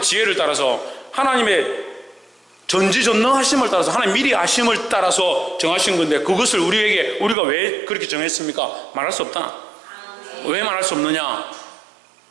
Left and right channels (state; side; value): drops out; left; at 7.4 s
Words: 지혜를 따라서, 하나님의 전지전능하심을 따라서, 하나님 미리 아심을 따라서 정하신 건데, 그것을 우리가 왜 그렇게 정했습니까? 말할 수 없다. 왜 말할 수 없느냐?